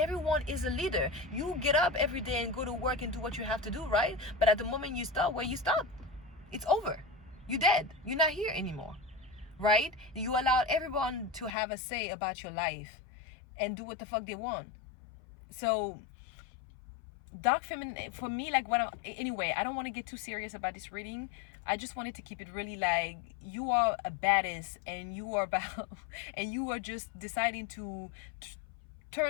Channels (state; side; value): drops out; right; at 11.5 s